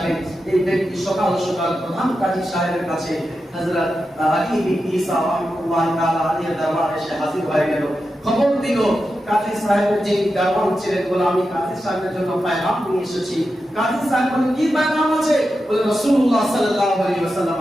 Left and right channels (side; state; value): both; normal; correlation 0.90